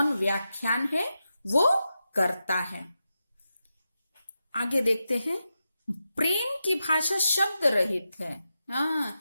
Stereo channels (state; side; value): inverted; both; correlation -0.89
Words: व्याख्यान है वो करता है। आगे देखते हैं, प्रेम की भाषा शब्द रहित है। हाँ,